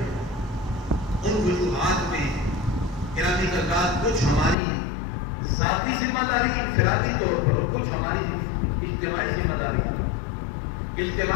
ان وجوہات میں گرامی حضرات کچھ ہماری ذاتی ذمہ داری انفرادی طور پر، اور کچھ ہماری اجتماعی ذمہ داری۔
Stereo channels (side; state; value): right; drops out; at 4.5 s